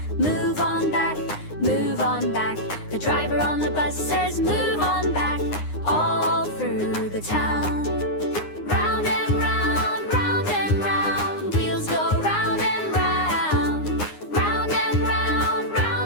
move on back, move on back. The driver on the bus says, move on back, all through the town. Round and round, round and round, wheels go round and round, round and round,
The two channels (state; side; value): late; right; 9.7 ms